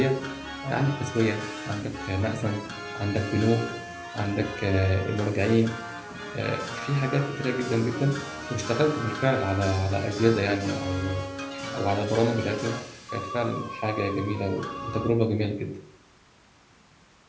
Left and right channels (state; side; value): identical; both; correlation 1.00